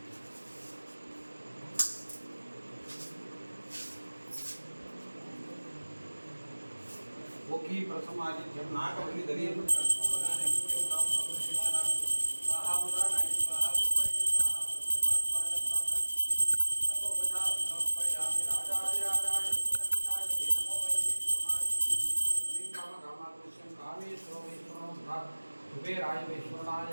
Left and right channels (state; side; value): inverted; both; correlation -1.00